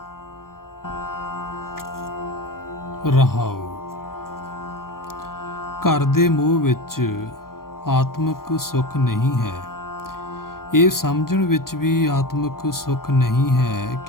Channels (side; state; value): right; late; 0.92 ms